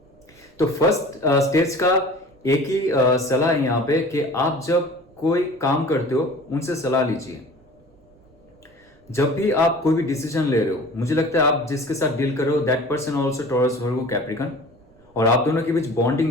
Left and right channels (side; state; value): right; noise; rumble, 30 dB below the sound